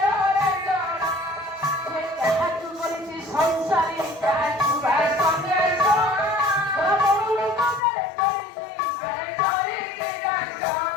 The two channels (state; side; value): drops out; right; at 7.8 s